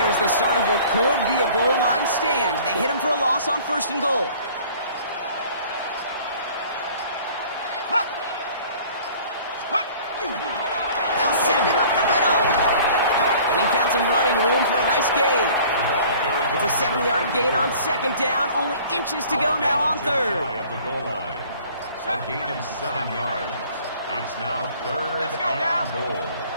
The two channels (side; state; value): both; inverted; correlation -0.50